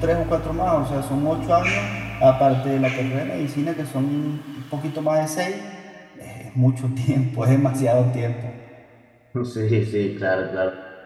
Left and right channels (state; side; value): identical; both; correlation 1.00